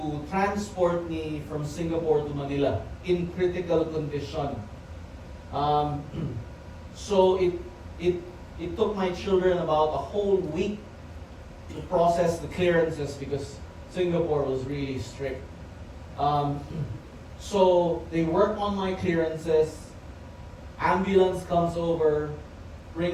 transport me from Singapore to Manila in critical condition. So it took my children about a whole week to process the clearances because Singapore was really strict. So they work on my clearances, ambulance comes over,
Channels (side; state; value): both; identical; correlation 1.00